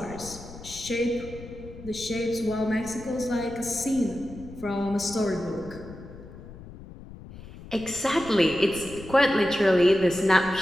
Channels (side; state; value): left; noise; rumble, 16 dB below the sound